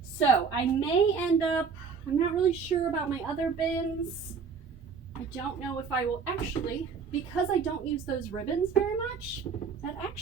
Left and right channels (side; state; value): left; quieter; 5.7 dB